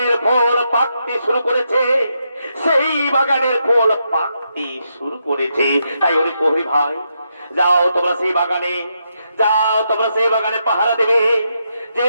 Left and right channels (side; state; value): both; inverted; correlation -0.82